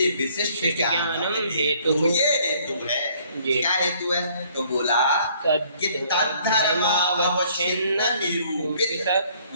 विशिष्ट ज्ञानम हेतु, ये हेतु है। क्या हेतु है? तो बोला कि तद्धर्मावच्छिन्न निरूपित,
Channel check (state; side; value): inverted; both; correlation -0.61